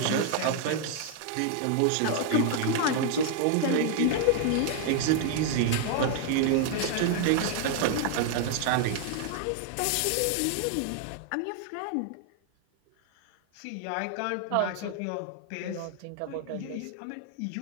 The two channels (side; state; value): both; different; correlation 0.00